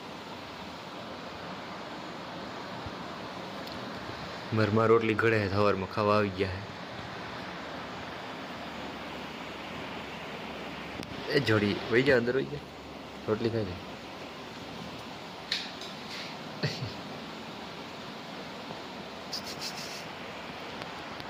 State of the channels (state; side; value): identical; both; correlation 1.00